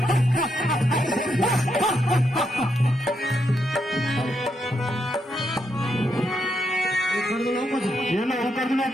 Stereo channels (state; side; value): normal; both; correlation 0.80